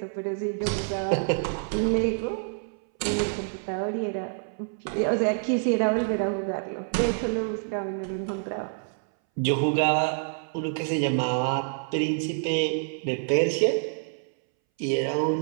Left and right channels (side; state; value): left; silent; 60 dB below the other